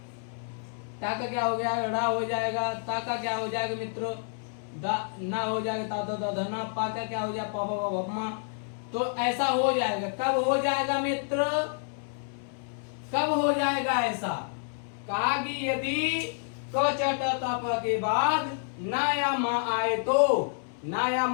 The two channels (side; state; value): right; silent; 59 dB below the other